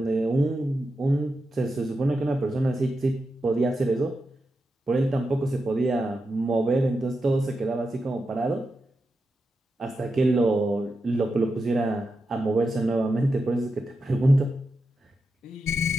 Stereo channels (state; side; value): normal; both; correlation 0.88